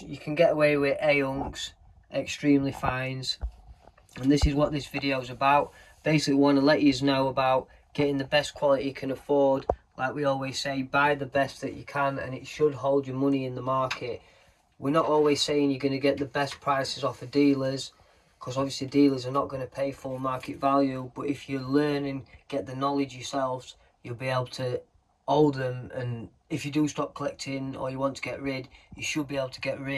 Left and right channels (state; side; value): identical; both; correlation 1.00